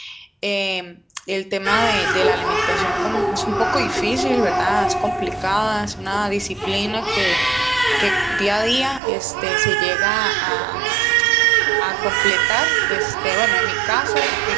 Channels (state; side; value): drops out; left; at 9.0 s